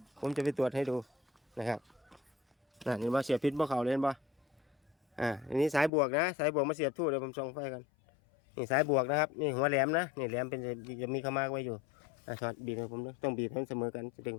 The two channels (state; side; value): drops out; right; at 5.9 s